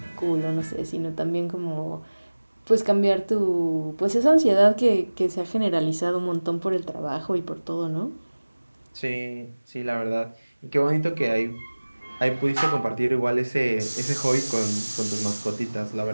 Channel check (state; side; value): inverted; both; correlation -1.00